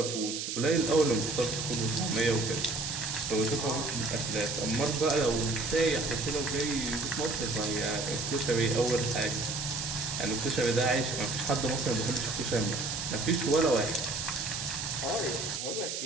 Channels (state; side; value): noise; right; hiss, 4 dB below the sound